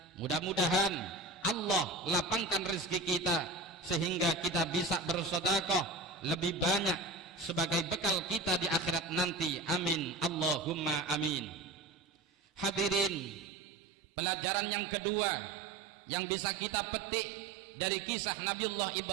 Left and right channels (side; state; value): left; drops out; at 13.5 s